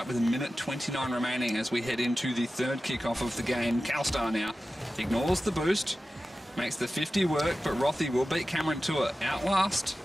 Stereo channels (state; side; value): normal; both; correlation 0.94